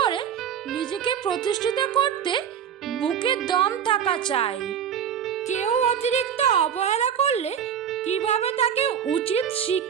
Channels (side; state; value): left; quieter; 8.5 dB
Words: করে নিজেকে প্রতিষ্ঠিত করতে বুকে দম থাকা চাই। কেউ অতিরিক্ত অবহেলা করলে কিভাবে তাকে উচিত